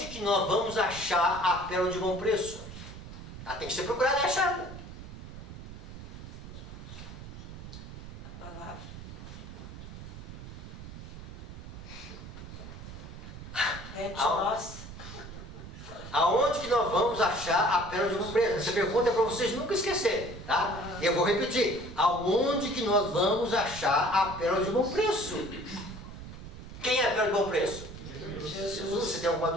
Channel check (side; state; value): right; noise; rumble, 12 dB below the sound